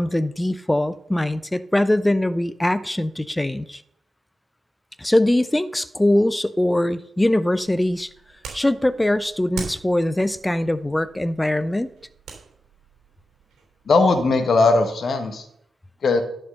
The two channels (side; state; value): both; normal; correlation 0.95